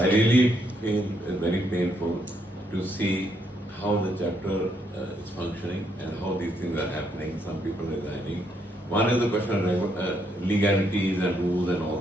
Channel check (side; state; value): both; normal; correlation 0.74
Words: really feel very painful to see how the chapter is functioning and how these things are happening. Some people resigning. One is the question of legalities and rules and all